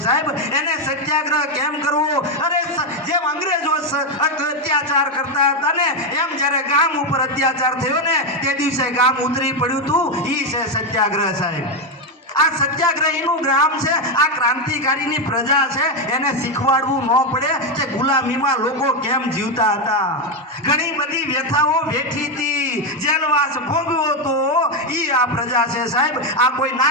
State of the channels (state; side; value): normal; both; correlation 0.07